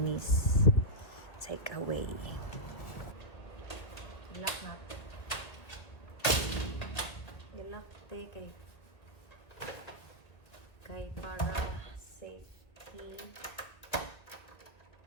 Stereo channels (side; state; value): right; late; 1.8 ms